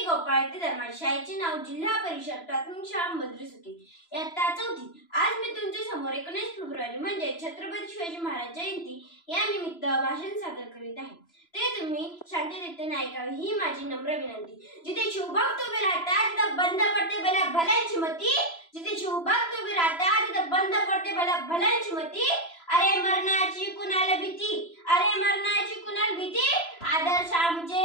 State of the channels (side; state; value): right; late; 3.0 ms